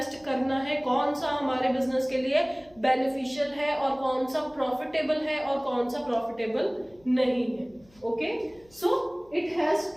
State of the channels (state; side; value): noise; left; hum, 29 dB below the sound